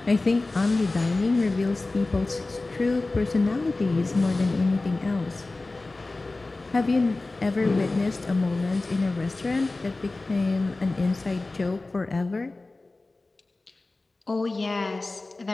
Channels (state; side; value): quieter; right; 3.2 dB